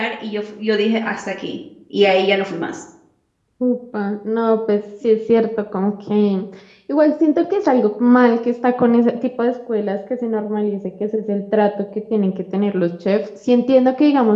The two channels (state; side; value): identical; both; correlation 1.00